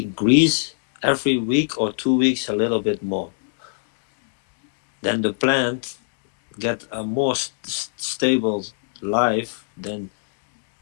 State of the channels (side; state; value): right; silent; digital silence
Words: every week or 2 weeks a little bit more. Then the plant get a more stable life. Then